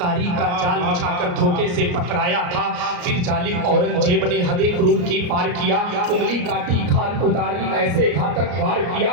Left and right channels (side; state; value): left; late; 34 ms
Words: का जाल बिछाकर धोखे से पकड़ाया था। फिर जालिम औरंगजेब ने हदे क्रूर की पार किया, उंगली काटी खान उतारी ऐसे घातक वार